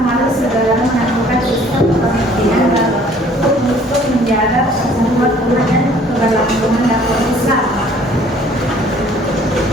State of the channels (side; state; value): both; normal; correlation 0.56